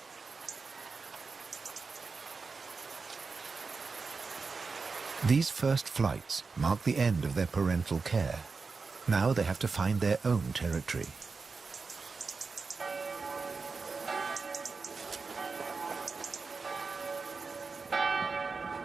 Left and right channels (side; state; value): left; quieter; 4.5 dB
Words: These first flights mark the end of their parental care. Now they have to find their own territory.